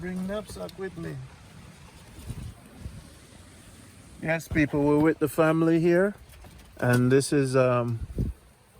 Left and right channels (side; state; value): both; identical; correlation 1.00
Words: knapsack with me? Yes, people, we're with the family here, and this is